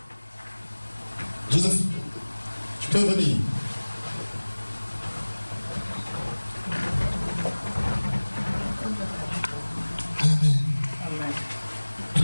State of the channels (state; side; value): inverted; both; correlation -1.00